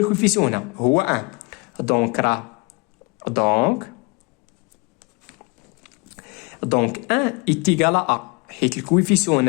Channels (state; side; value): quieter; right; 29.1 dB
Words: هنا هو 1 دونك 1 ايتيغال ا حيت الكويفيسيون